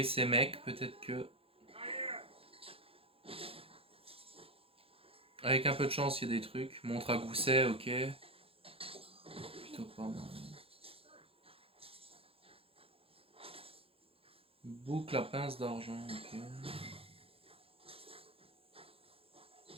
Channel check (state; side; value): late; left; 0.27 ms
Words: ces mecs, peut-être que... Avec un peu de chance, il y a des trucs. Montre à gousset, ok. Plutôt pas mal. Boucle à pince d'argent, ok.